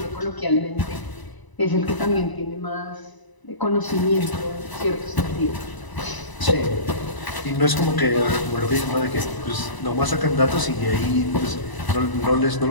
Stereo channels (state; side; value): late; right; 1.0 ms